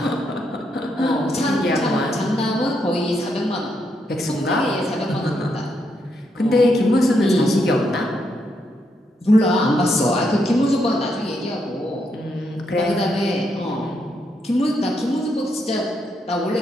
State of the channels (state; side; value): normal; both; correlation 0.79